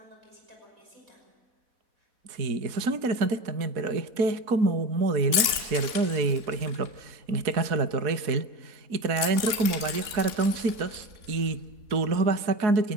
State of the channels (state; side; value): late; left; 4.1 ms